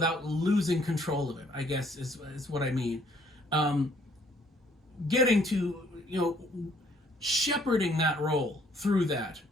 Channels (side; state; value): both; normal; correlation 0.64